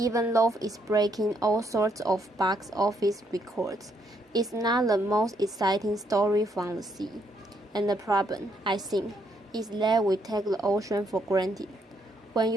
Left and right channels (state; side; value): normal; both; correlation 0.73